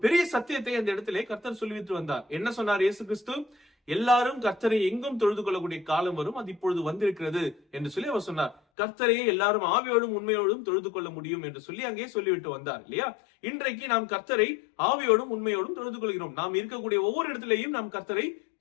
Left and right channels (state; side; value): drops out; right; at 8.6 s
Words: பெரிய சத்தியத்தை அந்த இடத்திலே கர்த்தர் சொல்லிவிட்டு வந்தார். என்ன சொன்னார் இயேசு கிறிஸ்து? எல்லாரும் கர்த்தரை எங்கும் தொழுது கொள்ளக்கூடிய காலம் வரும், அது இப்பொழுது வந்திருக்கிறது என்று சொல்லி அவர் சொன்னார். கர்த்தரையே எல்லாரும் ஆவியோடும் உண்மையோடும் தொழுது கொள்ள முடியும் என்று சொல்லி அங்கே சொல்லிவிட்டு வந்தார் இல்லையா? இன்றைக்கு நாம் கர்த்தரை ஆவியோடும் உண்மையோடும் தொழுது கொள்கிறோம். நாம் இருக்கக்கூடிய ஒவ்வொரு இடத்திலேயும் நாம் கர்த்தரை